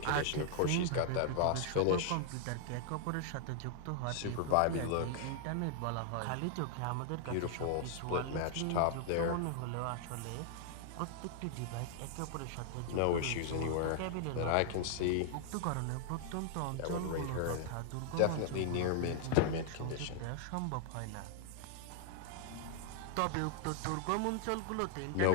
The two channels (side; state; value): both; different; correlation 0.00